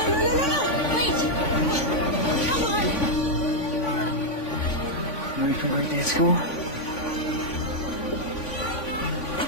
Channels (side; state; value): right; late; 3.5 ms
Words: You ready for birthday at school?